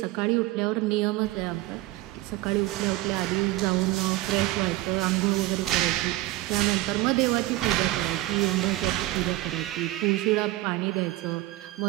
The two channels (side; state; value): left; quieter; 17.6 dB